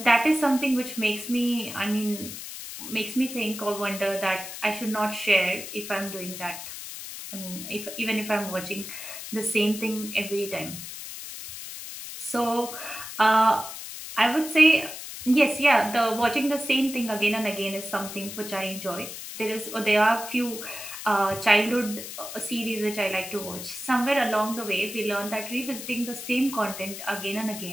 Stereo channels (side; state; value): left; noise; hiss, 10 dB below the sound